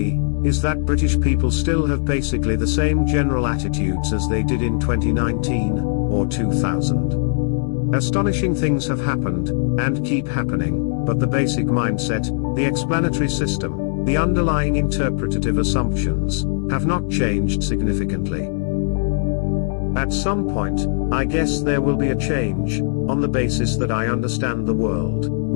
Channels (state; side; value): silent; right; digital silence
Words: is that British people still have basically the same general attitudes as they did in 2019 or 2000. Astonishing things have happened, and keep happening, but the basic mindset, the explanatory system, the underlying interpretative assumptions, have not changed significantly. At some point, I guess there will be a change, on the basis that I understand the world,